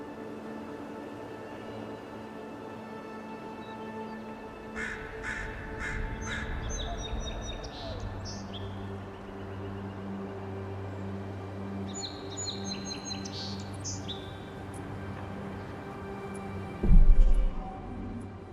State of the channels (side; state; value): both; identical; correlation 1.00